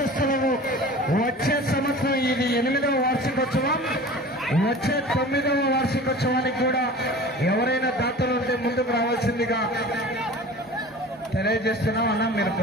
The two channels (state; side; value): normal; both; correlation 0.39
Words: వచ్చే సంవత్సరం ఇది 8వ వార్షికోత్సవం, వచ్చే 9వ వార్షికోత్సవానికి కూడా ఎవరైనా దాతలు ఉంటే ముందుకు రావాల్సిందిగా తెలియజేస్తున్నాం. అన్న మీరు